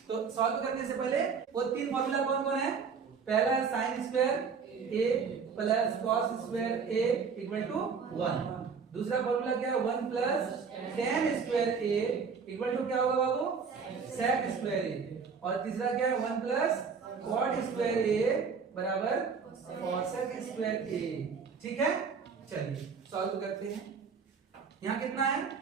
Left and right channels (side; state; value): left; quieter; 5.7 dB